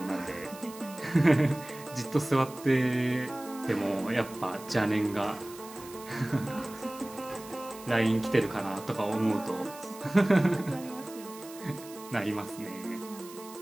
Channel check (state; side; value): noise; right; hiss, 17 dB below the sound